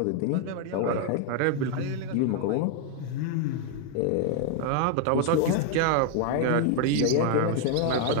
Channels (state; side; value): different; both; correlation 0.00